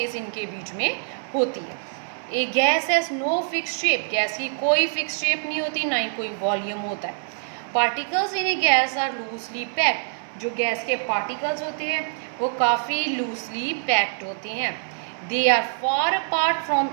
इनके बीच में होती है। A gas has no fix shape. Gas की कोई फिक्स शेप नहीं होती, ना ही कोई वॉल्यूम होता है। Particles in a gas are loosely packed. जो गैस के पार्टिकल्स होते हैं वो काफ़ी लूजली पैक्ड होते हैं। They are far apart from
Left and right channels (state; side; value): silent; left; 62 dB below the other